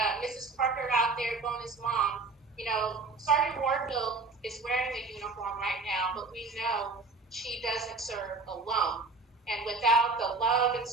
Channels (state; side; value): quieter; left; 3.8 dB